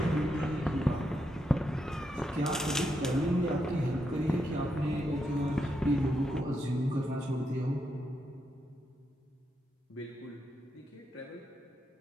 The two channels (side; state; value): both; normal; correlation 0.82